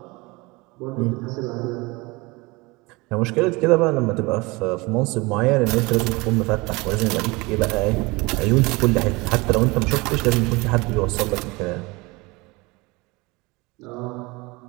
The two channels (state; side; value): quieter; left; 24.3 dB